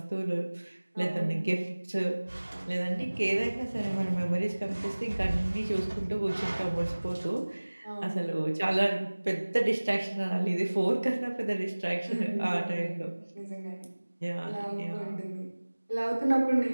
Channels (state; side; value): inverted; both; correlation -1.00